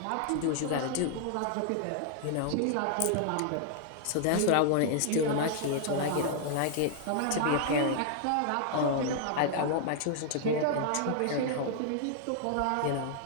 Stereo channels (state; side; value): different; both; correlation -0.01